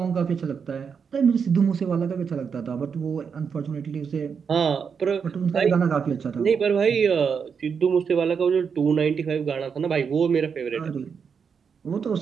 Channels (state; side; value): quieter; left; 6.4 dB